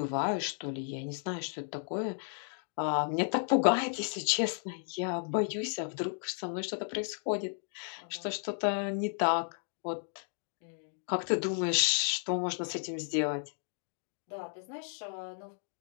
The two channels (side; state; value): right; silent; 55 dB below the other